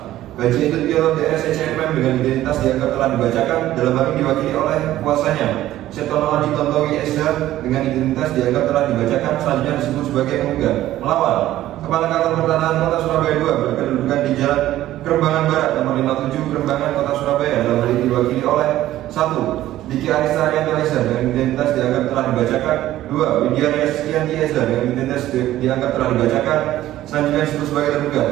Gaji Edut Piero DSCMM dengan identitas dianggap telah dibacakan, dalam hal ini diwakili oleh kuasanya Setono Adi Tontowi SH dengan identitas dianggap telah dibacakan, selanjutnya disebut sebagai penggugat. Melawan Kepala Kantor Pertanahan Kota Surabaya 2 berkedudukan di Jalan Kerembangan Barat nomor 57 Kerembangan Kota Surabaya, dalam hal ini diwakili oleh 1. Diki Arista Arianto SH dengan identitas dianggap telah dibacakan. 2. Widya Riaskianti SH dengan identitas dianggap telah dibacakan, selanjutnya disebut sebagai tergugat.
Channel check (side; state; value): left; quieter; 14.2 dB